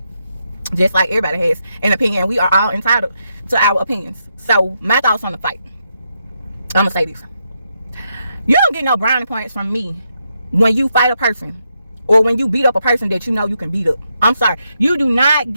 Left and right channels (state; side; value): inverted; both; correlation -0.82